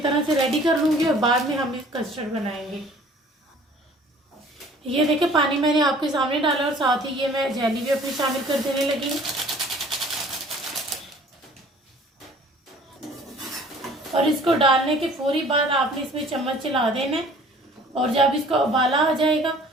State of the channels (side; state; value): both; normal; correlation 0.52